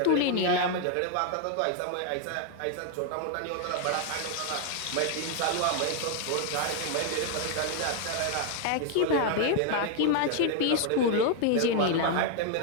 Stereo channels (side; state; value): both; different; correlation 0.00